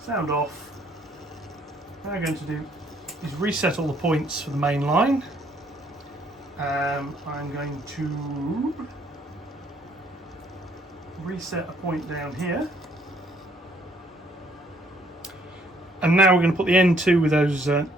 off. What I'm going to do is reset all the points for the main line. I'm going to reset a point down here. And now we're going to put the N2 with those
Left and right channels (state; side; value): normal; both; correlation 0.65